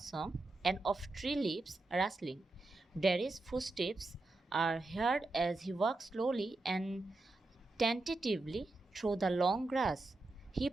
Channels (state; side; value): quieter; left; 3.0 dB